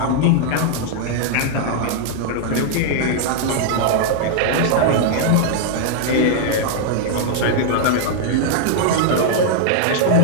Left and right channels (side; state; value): both; different; correlation -0.01